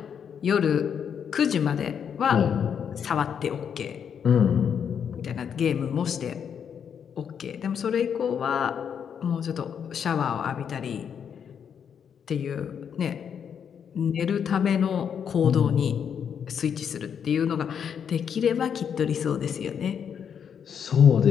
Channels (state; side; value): quieter; right; 7.7 dB